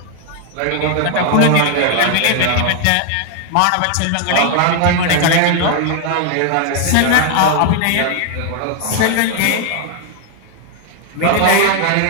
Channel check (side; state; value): both; different; correlation 0.00